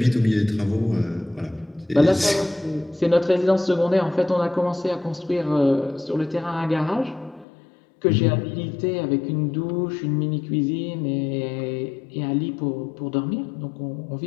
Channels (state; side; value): drops out; right; at 7.5 s